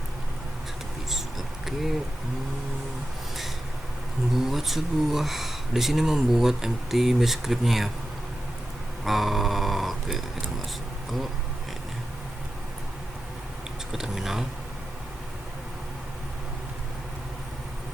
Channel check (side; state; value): both; normal; correlation 0.91